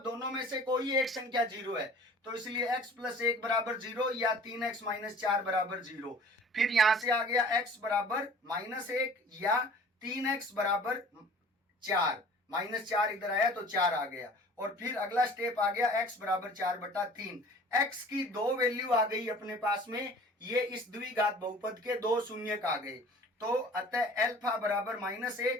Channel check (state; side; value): normal; both; correlation 0.47